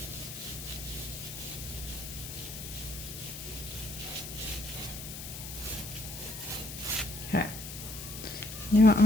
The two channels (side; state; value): left; noise; hiss, 9 dB below the sound